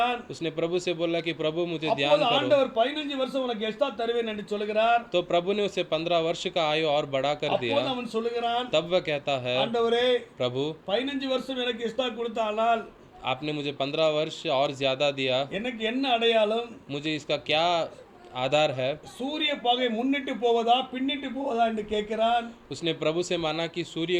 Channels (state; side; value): identical; both; correlation 1.00